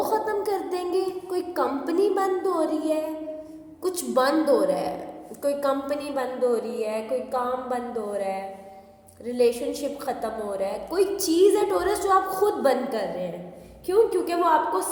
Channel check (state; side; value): identical; both; correlation 1.00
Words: ख़त्म कर देंगे, कोई कंपनी बंद हो रही है, कुछ बंद हो रहा है, कोई कंपनी बंद हो रही है, कोई काम बंद हो रहा है, रिलेशनशिप ख़त्म हो रहा है, कोई चीज़ है टॉरस जो आप खुद बंद कर रहे हैं। क्यों? क्योंकि वो आपको